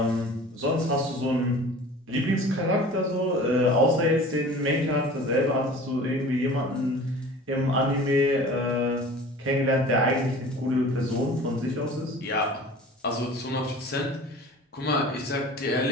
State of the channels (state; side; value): normal; both; correlation 0.42